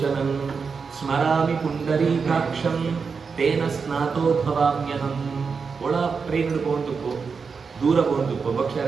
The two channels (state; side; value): quieter; left; 5.4 dB